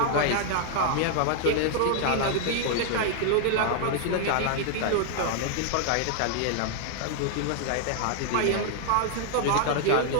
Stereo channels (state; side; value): different; both; correlation 0.00